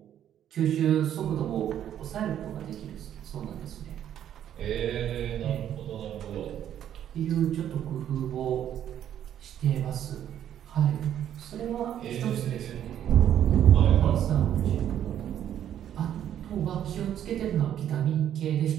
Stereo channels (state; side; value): quieter; left; 10.4 dB